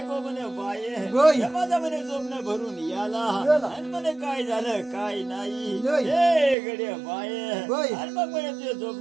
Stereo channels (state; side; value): drops out; left; at 6.6 s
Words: म्हणे बाये माझा म्हणे जोमनं भरून याला आणि म्हणे काय झालं काय नाही हे गड्या बाये आणि मग म्हणे ते